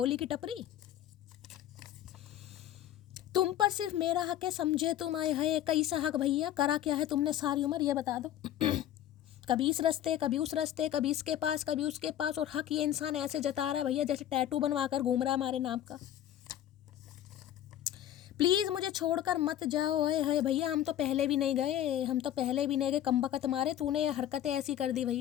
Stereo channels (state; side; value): quieter; right; 11.8 dB